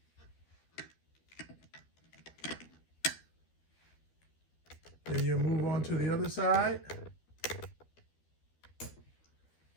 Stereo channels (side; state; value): right; late; 12 ms